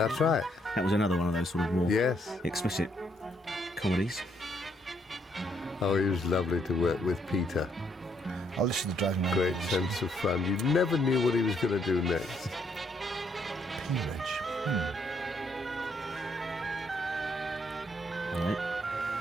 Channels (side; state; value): both; normal; correlation 0.72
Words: right. That was another one of those sort of more Yes. explicit comedies. Oh, he was lovely to work with, Peter. I'll listen to Driving Around. Great sense of fun. You never knew what he was going to do next. Peerage. All right.